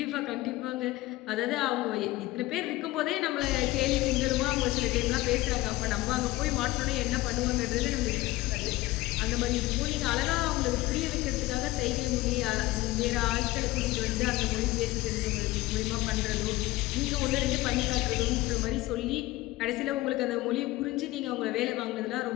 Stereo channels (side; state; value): right; quieter; 18.3 dB